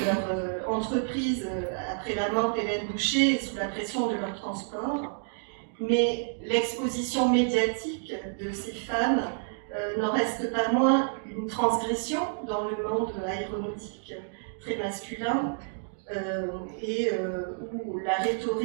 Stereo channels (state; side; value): silent; left; digital silence